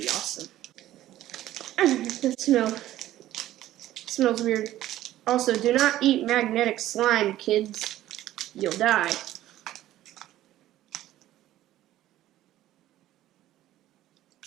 awesome. That smells weird. Also, do not eat magnetic slime, kids. You'll die.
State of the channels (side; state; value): left; quieter; 14.0 dB